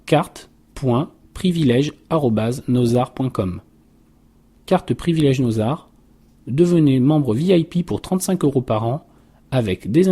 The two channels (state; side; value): identical; both; correlation 1.00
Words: carte.privilège@nosart.com. Carte privilège Nosart. Devenez membre VIP pour 35 € par an avec des